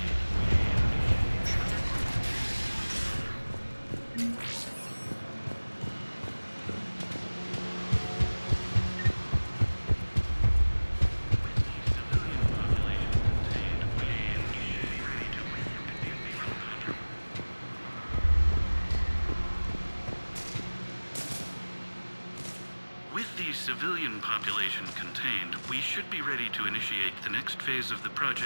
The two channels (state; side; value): inverted; both; correlation -1.00